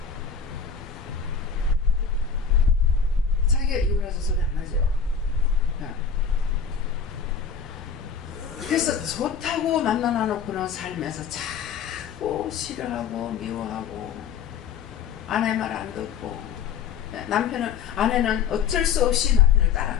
자기가 이혼해서 소리 안 하죠. 예. 그래서 좋다고 만나놓고는 살면서 자꾸 싫어하고 미워하고 아내 말 안 듣고, 아내는 어쩔 수 없이 남편을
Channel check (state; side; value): quieter; right; 6.5 dB